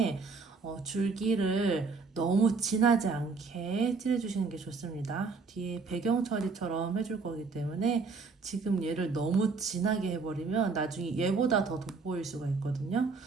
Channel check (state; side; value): quieter; left; 4.5 dB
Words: 줄기를 너무 진하지 않게 칠해주시는 게 좋습니다. 뒤에 배경 처리처럼 해줄 거기 때문에 지금 얘를 너무 진하게 해버리면 나중에 얘보다 더 돋보일 수가 있거든요.